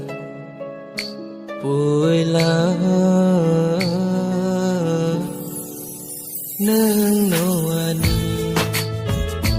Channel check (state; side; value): identical; both; correlation 1.00